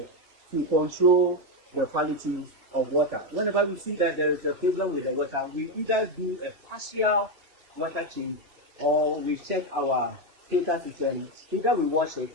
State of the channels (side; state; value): left; late; 3.1 ms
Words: to control the quality of water. Whenever we see that there is a problem with the water, we either do a partial water change or we check our filter system. Either we wash it